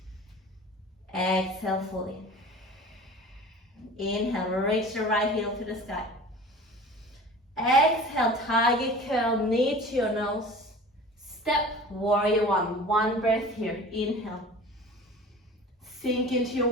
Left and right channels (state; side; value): normal; both; correlation 0.40